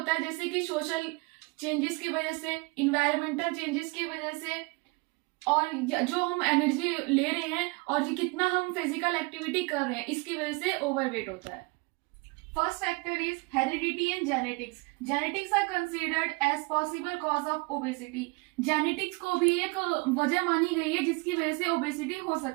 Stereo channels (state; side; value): quieter; left; 27.7 dB